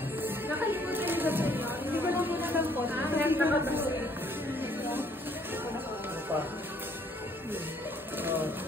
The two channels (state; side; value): normal; both; correlation 0.63